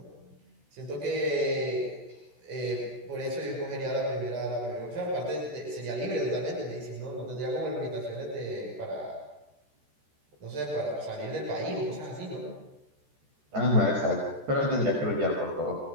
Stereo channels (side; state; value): left; late; 14 ms